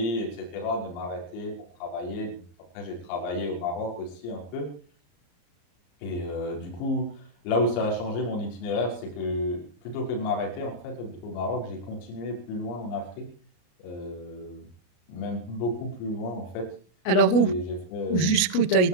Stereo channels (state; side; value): late; right; 33 ms